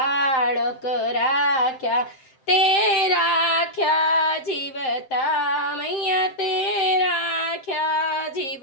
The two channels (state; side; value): late; right; 7.6 ms